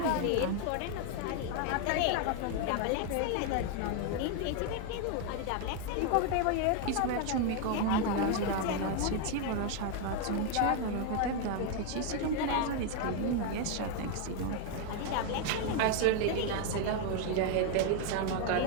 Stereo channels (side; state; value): both; different; correlation 0.01